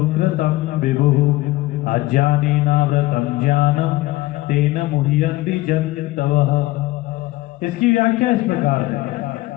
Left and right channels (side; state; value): right; quieter; 18.4 dB